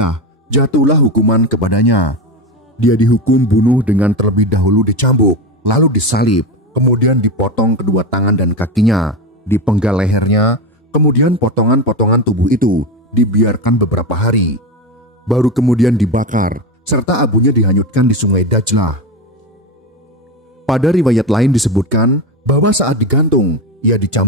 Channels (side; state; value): both; normal; correlation 0.19